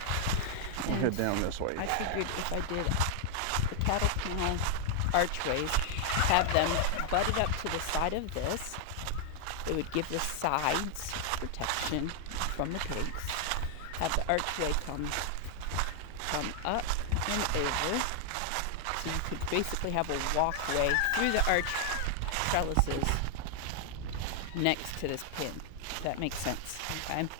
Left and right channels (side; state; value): both; different; correlation 0.00